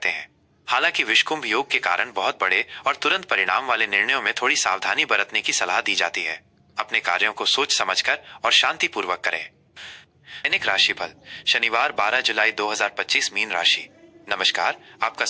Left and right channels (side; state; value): both; identical; correlation 1.00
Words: हैं। हालांकि विषकुंभ योग के कारण बहुत बड़े और तुरंत परिणाम वाले निर्णयों में थोड़ी सावधानी बरतने की सलाह दी जाती है। अपने कार्यों को सोच समझकर और शांतिपूर्वक करें। दैनिक राशिफल शनिवार 12 जुलाई 2025 मीन राशि। नमस्कार, आपका